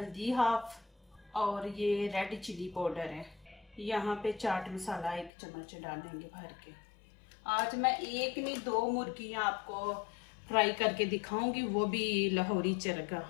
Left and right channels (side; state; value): right; drops out; at 5.3 s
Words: हाफ और ये रेड चिली पाउडर है। यहाँ पे चाट मसाला 1 चम्मच डालेंगे भर के। आज मैं एक नहीं 2 मुर्गियाँ आपको फ्राई करके दिखाऊंगी, वो भी लाहौरी चरगा।